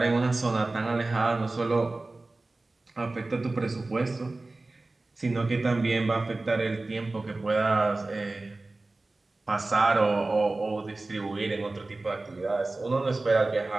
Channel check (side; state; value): left; quieter; 3.1 dB